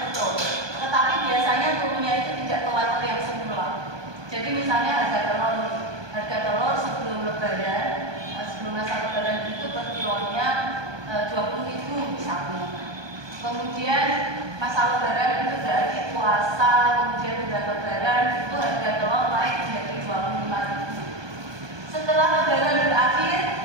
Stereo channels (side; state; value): left; late; 1.2 ms